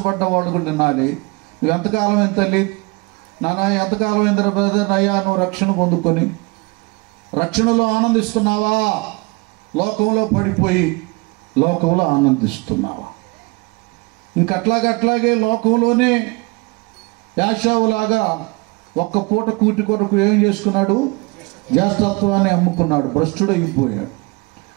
వాళ్ళు కూడా వినాలి. నువ్వు ఎంతకాలం ఎంత తల్లి నానా, ఎంతకాలం ఎంత బ్రదర్ అయ్యా నువ్వు రక్షణ పొందుకొని రక్షణలో ఆనందిస్తున్నావా? లోకంలో పడిపోయి లోకంలో ఆనందిస్తున్నావా? ఇంకట్లాగే లోకంలోనే యాషావులాగా ఒక్క పూట కూటి కొరకు ఏం చేసుకున్నాడు? జ్యేష్ఠత్వాన్ని అమ్ముకున్నాడు, భ్రష్టుడు అయిపోయాడు.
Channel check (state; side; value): quieter; left; 27.1 dB